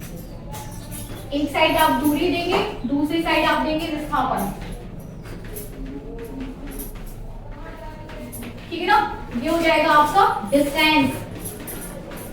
एक साइड आप दूरी देंगे, दूसरी साइड आप देंगे विस्थापन, ठीक है ना। ये हो जाएगा आपका डिस्टेंस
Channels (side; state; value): both; identical; correlation 1.00